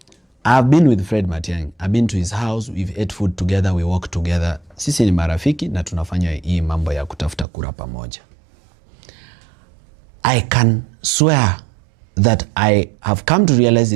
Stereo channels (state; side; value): drops out; left; at 7.5 s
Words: I've been with Fred Matiang'i. I've been to his house, we've ate food together, we walk together. Sisi ni marafiki na tunafanya hii mambo ya kutafuta kura pamoja. I can swear that I have come to realize